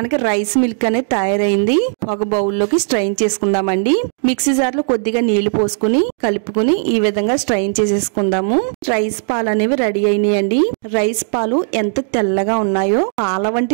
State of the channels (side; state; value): left; silent; 65 dB below the other